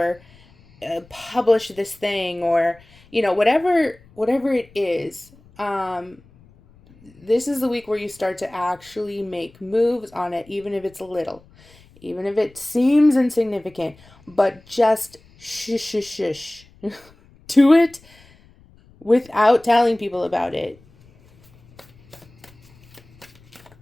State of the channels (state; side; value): noise; left; rumble, 27 dB below the sound